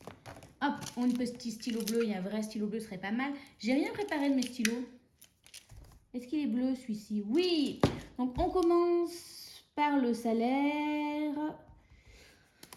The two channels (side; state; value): both; identical; correlation 1.00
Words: hop, on a un petit stylo bleu. Il y a un vrai stylo bleu, ce serait pas mal. J'ai rien préparé de mes stylos. Est-ce qu'il est bleu celui-ci? Oui. Donc, on commence par le salaire.